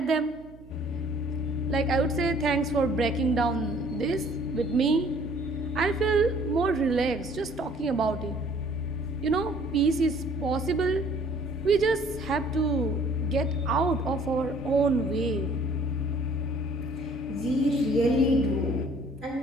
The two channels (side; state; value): right; noise; hum, 22 dB below the sound